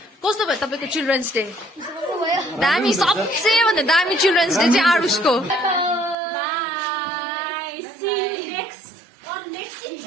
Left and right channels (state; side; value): drops out; left; at 6.2 s